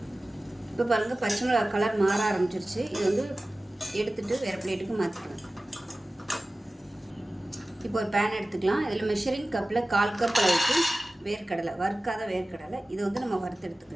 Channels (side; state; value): both; normal; correlation 0.97